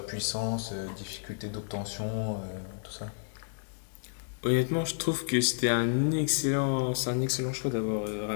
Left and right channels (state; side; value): silent; right; digital silence